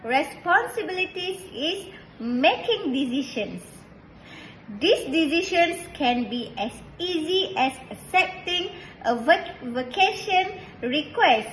responsibilities is making decisions. These decisions can be as easy as accepting a vacation request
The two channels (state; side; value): identical; both; correlation 1.00